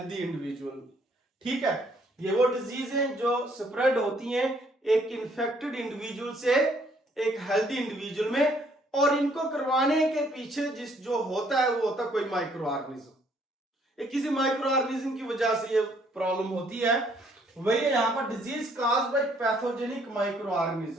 इंडिविजुअल में, ठीक है। ये वो डिजीज है जो स्प्रेड होती है एक इन्फेक्टेड इंडिविजुअल से एक हेल्दी इंडिविजुअल में, और इनको करवाने के पीछे जिस जो होता है वो होता है कोई माइक्रो ऑर्गेनिज्म। किसी माइक्रो ऑर्गेनिज्म की वजह से ये प्रॉब्लम होती है। वही यहां पर disease caused by pathogenic micro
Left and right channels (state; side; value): normal; both; correlation 0.65